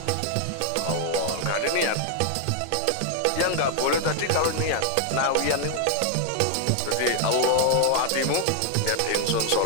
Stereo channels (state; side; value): different; both; correlation 0.00